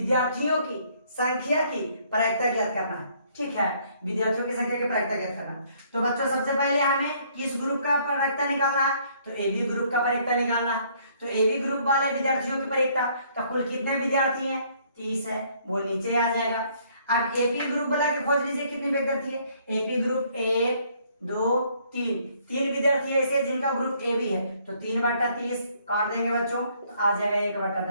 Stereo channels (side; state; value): both; inverted; correlation -0.64